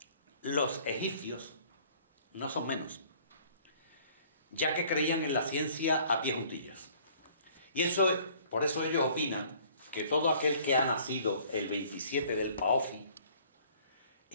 los egipcios no son menos, ya que creían en la ciencia a pie juntillas. Y por eso ellos opinan que todo aquel que ha nacido el 27 del Paofi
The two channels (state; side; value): inverted; both; correlation -0.55